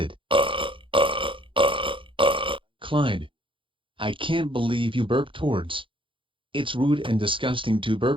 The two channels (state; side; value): late; left; 0.25 ms